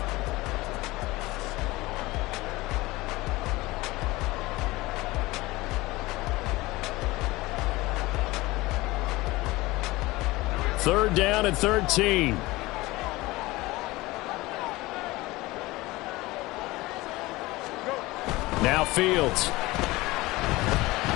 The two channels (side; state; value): right; quieter; 20.3 dB